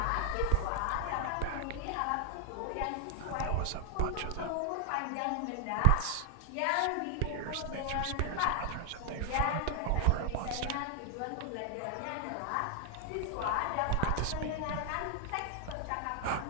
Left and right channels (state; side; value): different; both; correlation 0.00